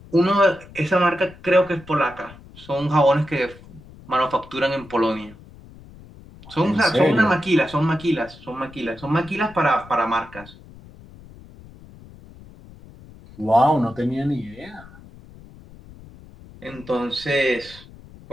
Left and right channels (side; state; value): left; noise; rumble, 21 dB below the sound